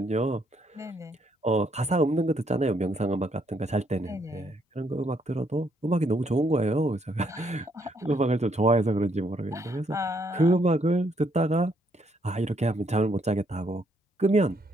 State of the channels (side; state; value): both; normal; correlation 0.72